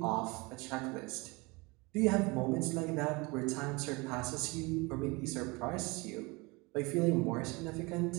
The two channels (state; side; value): quieter; left; 25.8 dB